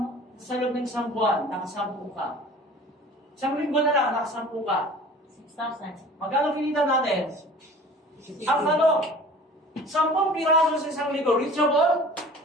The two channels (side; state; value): both; normal; correlation 0.44